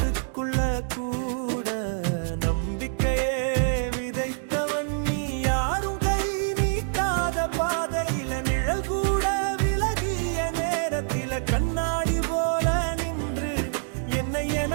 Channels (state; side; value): silent; left; 61 dB below the other